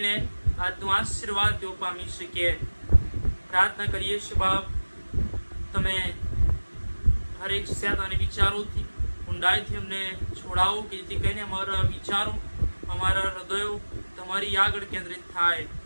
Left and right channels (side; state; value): both; inverted; correlation -1.00